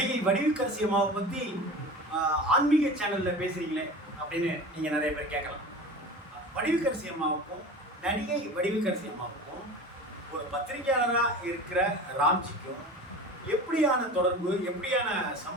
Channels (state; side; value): normal; both; correlation 0.34